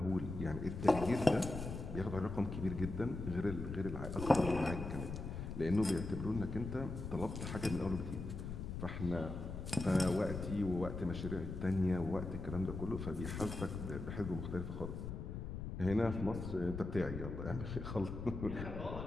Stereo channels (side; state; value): left; noise; rumble, 6 dB below the sound